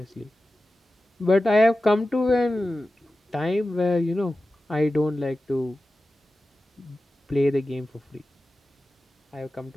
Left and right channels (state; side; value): normal; both; correlation 0.94